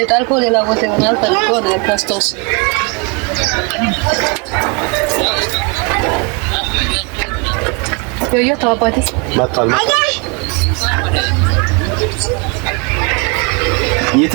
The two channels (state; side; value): quieter; left; 31.7 dB